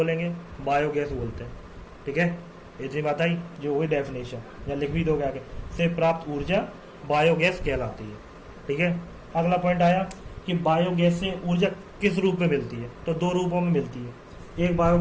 बायोगैस बोलते हैं, ठीक है। इतनी बात आई, जो हुई डेफिनेशन, या लिख भी दोगे आगे, से प्राप्त ऊर्जा बायोगैस कहलाती है, ठीक है। अगला पॉइंट आया कि बायोगैस से ऊर्जा किस रूप में मिलती है? तो 2 रूपों में मिलती है। एक,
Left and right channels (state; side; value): identical; both; correlation 1.00